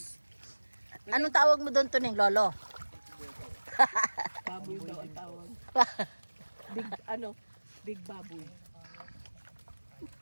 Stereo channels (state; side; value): inverted; both; correlation -1.00